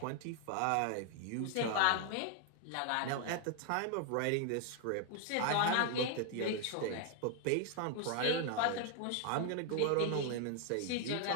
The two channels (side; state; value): both; different; correlation 0.00